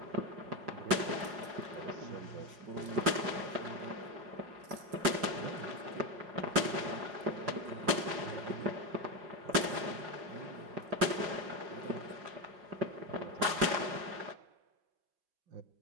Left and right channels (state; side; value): late; left; 5.5 ms